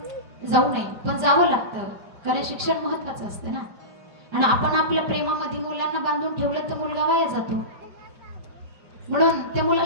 जाऊ नये, पण जावं लागतं, कारण शिक्षण महत्वाचं असतं ना. आणि आपण आपल्या प्रेमामध्ये मुलांना बांधून ठेवलं तर मुलगा वाया जातो, म्हणून त्या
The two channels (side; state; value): left; late; 5.0 ms